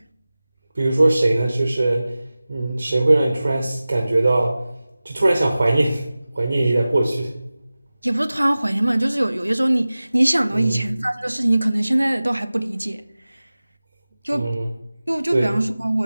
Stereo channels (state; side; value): inverted; both; correlation -0.97